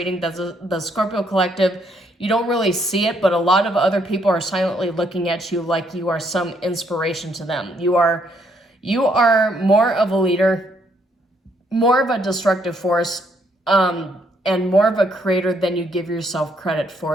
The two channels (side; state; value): both; normal; correlation 0.71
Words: that the Scorpio Collective, you don't really see it, but a lot of other people are silently looking at you like you are some inspiration to them. You are more of a leader, more of a destructive force, and more of a creator than you give yourself credit